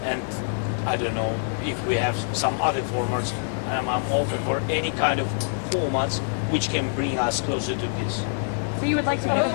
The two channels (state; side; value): silent; right; digital silence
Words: and I don't know if we have some other formats. I'm open for any kind of formats which can bring us closer to peace. So you would like to go